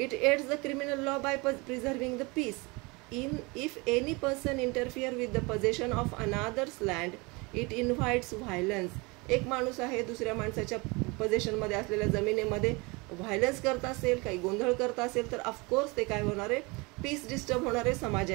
It aids the criminal law by preserving the peace. If any person interfere with the possession of another's land, it invites violence. एक माणूस आहे दुसऱ्या माणसाच्या पोझिशनमध्ये असलेल्या जमिनीमध्ये व्हायलन्स करत असेल, काही गोंधळ करत असेल तर ऑफकोर्स ते काय होणार आहे, पीस डिस्टर्ब होणार आहे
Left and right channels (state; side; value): quieter; left; 26.5 dB